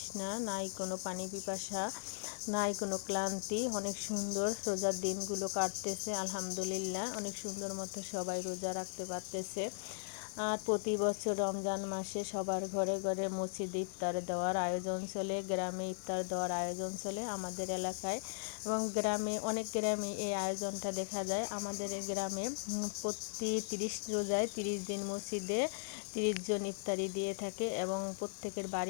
নাই কোনো পানি পিপাসা, নাই কোনো ক্লান্তি। অনেক সুন্দর রোজার দিনগুলো কাটতেছে আলহামদুলিল্লাহ। অনেক সুন্দর মতো সবাই রোজা রাখতে পারতেছে। আর প্রতি বছর রমজান মাসে সবার ঘরে ঘরে মসজিদে ইফতার দেওয়ার আয়োজন চলে, গ্রামে ইফতার দেওয়ার আয়োজন চলে আমাদের এলাকায়। এবং গ্রামে, অনেক গ্রামে এই আয়োজনটা দেখা যায়। আমাদের এই গ্রামে প্রতি 30 রোজায় 30 দিন মসজিদে 30 জন ইফতারি দিয়ে থাকে এবং প্রত্যেকের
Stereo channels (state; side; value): silent; right; digital silence